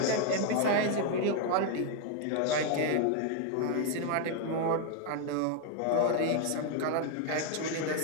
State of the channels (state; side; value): different; both; correlation 0.00